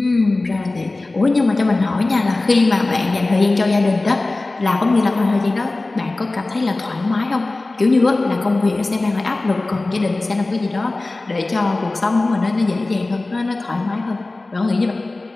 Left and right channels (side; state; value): right; quieter; 3.1 dB